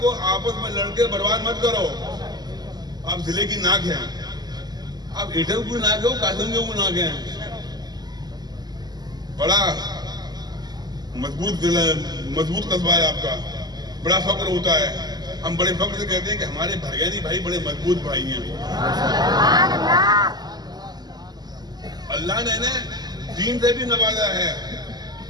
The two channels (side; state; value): left; late; 0.20 ms